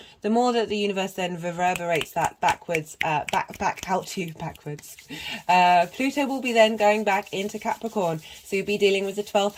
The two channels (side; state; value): both; identical; correlation 1.00